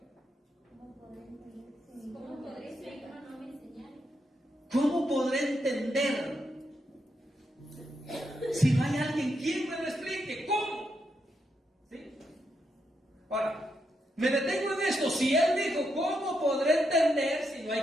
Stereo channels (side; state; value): both; normal; correlation 0.81